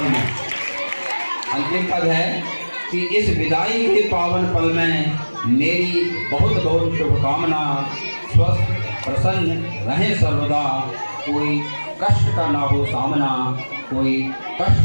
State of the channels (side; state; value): both; inverted; correlation -1.00